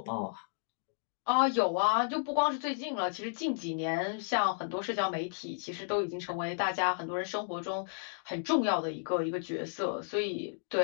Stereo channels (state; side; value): silent; right; digital silence